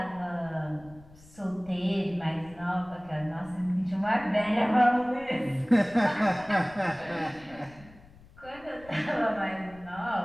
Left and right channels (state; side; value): noise; left; rumble, 23 dB below the sound